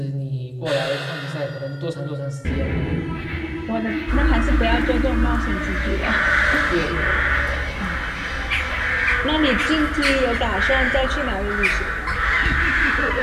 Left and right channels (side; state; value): both; identical; correlation 1.00